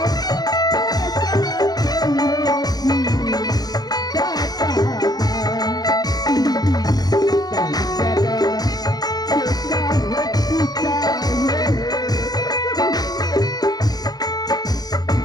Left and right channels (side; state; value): right; late; 0.19 ms